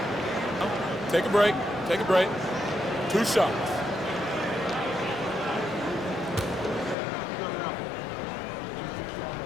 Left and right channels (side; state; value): right; drops out; at 7.0 s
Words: Take a break. Take a break. 2 shots.